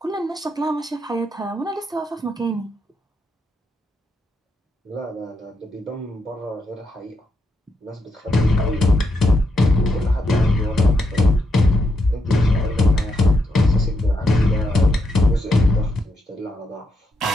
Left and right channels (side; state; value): both; normal; correlation 0.82